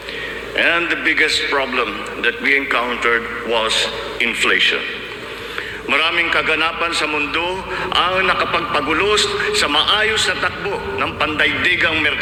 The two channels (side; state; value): both; identical; correlation 1.00